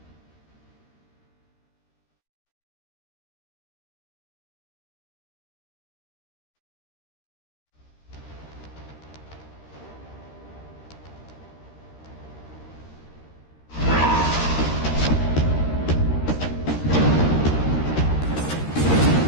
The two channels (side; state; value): right; late; 13 ms